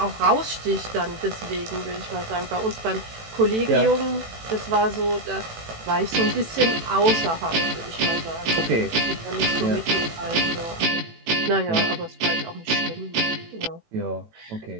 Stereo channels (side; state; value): left; late; 18 ms